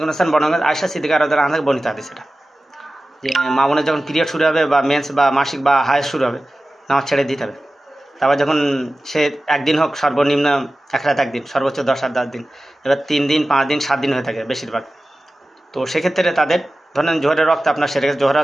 করিম সাল্লাল্লাহু আলাইহি ওয়াসাল্লাম আয়েশা সিদ্দিকা রাদিয়াল্লাহু আনহা থেকে বর্ণিত হাদিস এটা, যে মা বোনের যখন পিরিয়ড শুরু হবে বা মেন্স বা মাসিক বা হায়েজ শুরু হবে, নামাজ ছেড়ে দিতে হবে। তারপর যখন সে একদিন হোক, সর্বনিম্ন এক রাত একদিন, সর্বোচ্চ 10 আর 10 দিন, এবার 3 দিন 5 দিন 7 দিন হয়ে থাকে বেশিরভাগ। তো সেক্ষেত্রে তাদের ধরেন জোহরের রক্ত আপনার সেরে গেছে, জোহরের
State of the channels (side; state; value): both; normal; correlation 0.95